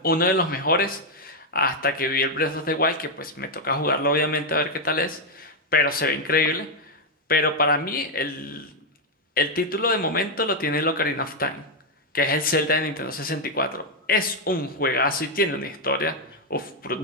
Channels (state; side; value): normal; both; correlation 0.01